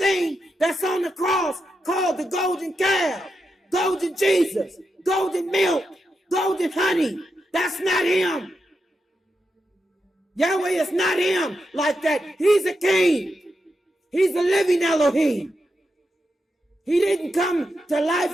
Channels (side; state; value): both; normal; correlation 0.86